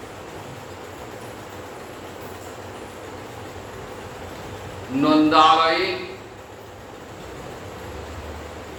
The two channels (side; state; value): both; identical; correlation 1.00